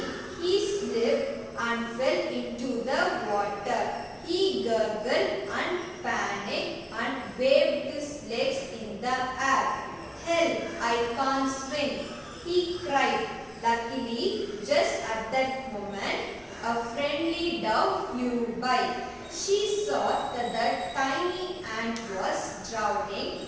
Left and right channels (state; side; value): identical; both; correlation 1.00